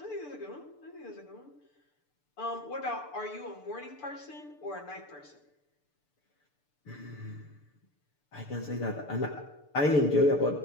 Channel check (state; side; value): late; right; 6.8 ms